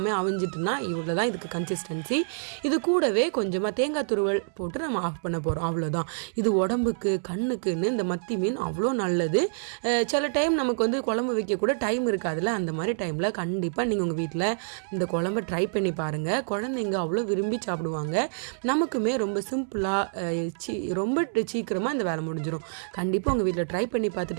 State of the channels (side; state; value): left; silent; digital silence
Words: அவிஞ்சிட்டுனா இவ்வளோ தான் இதுக்கு கன்சிஸ்டன்சி. இது கூடவே கொஞ்சமாக தேங்காய் துருவல் போட்டு நம்ம ஆஃப் பண்ண போகிறோம். அவ்வளோதான். இது உடம்புக்கு கண்ணுக்குன்னு இந்த மத்தி மீன் அவ்வளோ நல்லது. சில டைம் நமக்கு குழம்பு வைக்க கூட டைம் இருக்காதுல்ல. அந்த மாதிரி டைமில் கண்டிப்பாக நீங்கள் உங்கள் வீட்டில் இந்த குழம்பை ட்ரை பண்ணி பாருங்கள். குழந்தைங்க அவ்வளோ விரும்பி சாப்பிடுவாங்க. நமக்குமே ரொம்ப சிம்பிளாக ரொம்ப சீக்கிரமாக இந்த வேலை முடிஞ்சிடும். கண்டிப்பாக உங்கள் வீட்டில் ட்ரை பண்ணி